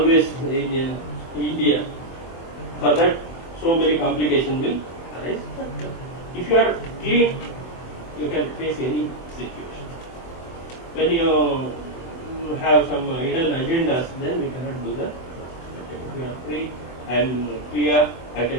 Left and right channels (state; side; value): late; right; 24 ms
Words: in India, for that so many complications will arise. If you are clean, you can face any situation. When you have some hidden agendas, then we cannot do that. Okay. If you are free and clear, I